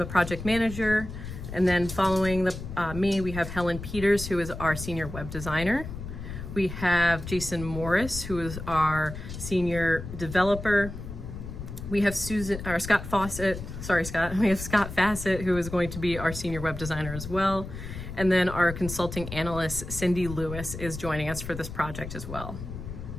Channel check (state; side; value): noise; left; rumble, 9 dB below the sound